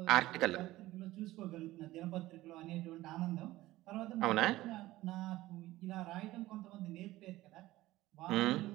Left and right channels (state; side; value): quieter; left; 17.0 dB